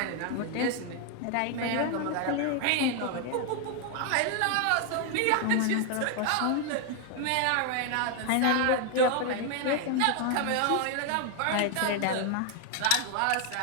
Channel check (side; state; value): both; different; correlation 0.00